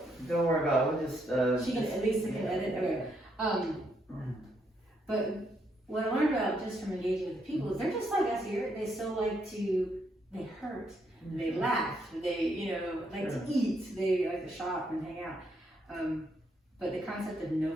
worry about it. We'll just. She can at least edit. Okay. But what I learned about just from engaging with the people is they're just like us here. They still like they hurt, they laugh, they like to eat, they like to shop and hang out. But the concept of no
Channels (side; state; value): both; normal; correlation 0.75